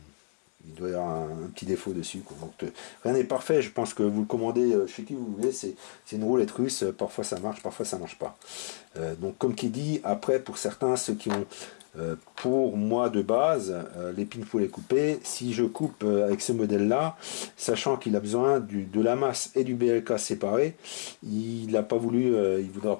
il doit y avoir un petit défaut dessus. Quoi. Donc, rien n'est parfait. Je pense que vous le commandez chez qui vous voulez. C'est une roulette russe. Parfois ça marche, parfois ça marche pas. Donc, comme qui dit, après, pour certains, ceux qui ont... pour moi de base, les pins faut les couper. Si je coupe avec ce modèle là, sachant qu'il a besoin de la masse et du BLK séparés, il n'a pas voulu, il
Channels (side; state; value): right; silent; digital silence